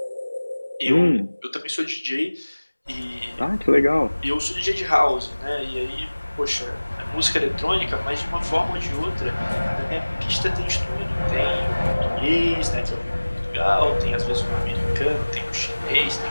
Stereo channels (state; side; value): inverted; both; correlation -1.00